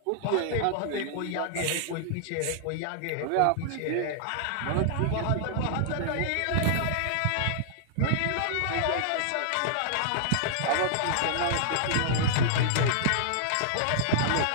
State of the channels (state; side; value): different; both; correlation -0.01